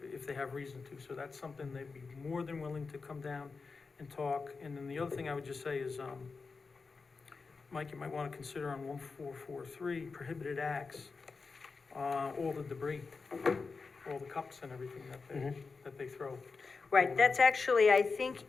If they have reason to, so that's something they'd be more than willing to come down and talk. And then the other thing I would just say is, Mike, you might wanna consider on 1443, prohibited acts, all the debris, all the cups and everything that they throw. Right, that's actually, I think,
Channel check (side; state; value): right; quieter; 4.5 dB